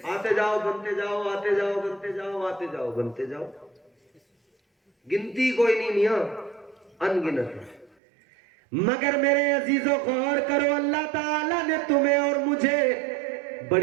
آتے جاؤ بنتے جاؤ، آتے جاؤ بنتے جاؤ، آتے جاؤ بنتے جاؤ، گنتی کوئی نہیں میاں، ان گنت ہے۔ مگر میرے عزیزو غور کرو، اللہ تعالیٰ نے تمہیں اور مجھے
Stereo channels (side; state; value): left; drops out; at 8.0 s